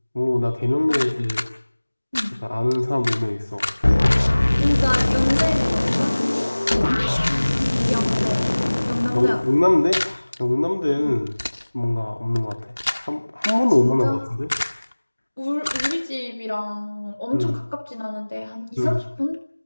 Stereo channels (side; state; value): both; inverted; correlation -1.00